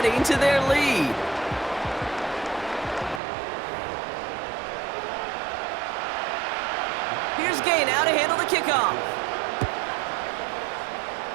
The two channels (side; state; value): left; drops out; at 3.2 s